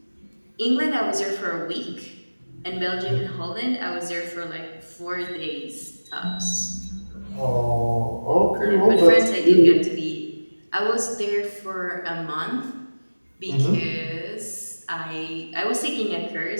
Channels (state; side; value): inverted; both; correlation -1.00